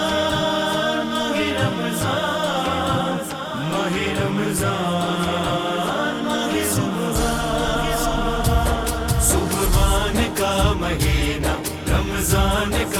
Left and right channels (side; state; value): both; identical; correlation 1.00